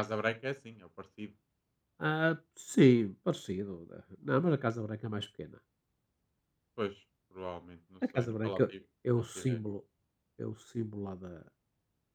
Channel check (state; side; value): identical; both; correlation 1.00